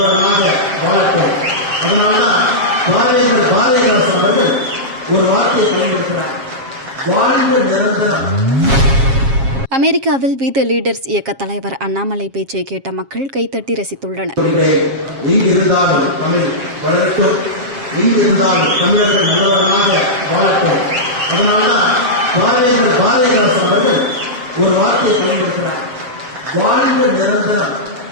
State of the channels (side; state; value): left; late; 7.4 ms